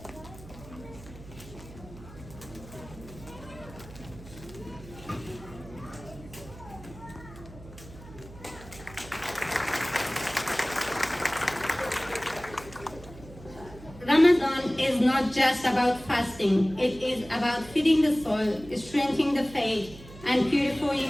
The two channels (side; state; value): right; noise; hum, 17 dB below the sound